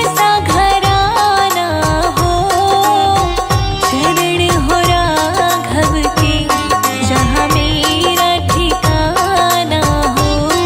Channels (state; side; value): identical; both; correlation 1.00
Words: सा घराना हो,